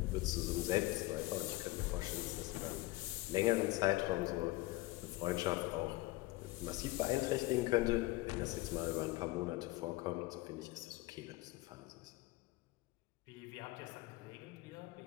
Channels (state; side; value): quieter; right; 19.5 dB